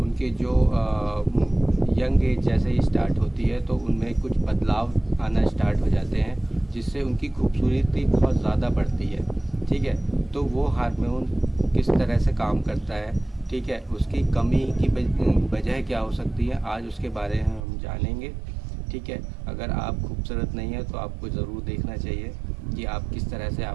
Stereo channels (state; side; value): drops out; left; at 17.6 s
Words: जो यंग एज जैसे ही स्टार्ट होती है तो उनमें कुछ बदलाव आना स्टार्ट हो जाते हैं, जिससे उनकी खूबसूरती बहुत ज़्यादा बढ़ती है। ठीक है, तो वो हार्मोन किस तरह से काम करता है, ठीक है, उसकी कमी की वजह क्या हो सकती है, आज उसके बारे में हम जानेंगे। ठीक है, अगर आप खूबसूरत नहीं है तो आपको ज़रूर देखना चाहिए कि आप किस तरह से